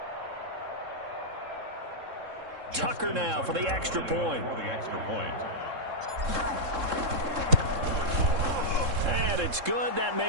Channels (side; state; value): left; late; 3.7 ms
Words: Tucker now for the extra point. And it's good. That